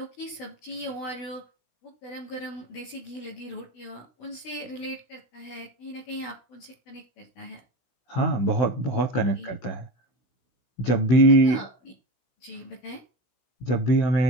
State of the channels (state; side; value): late; right; 16 ms